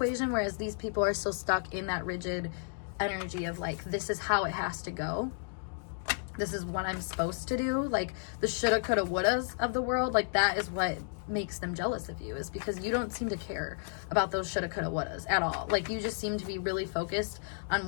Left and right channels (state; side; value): silent; right; digital silence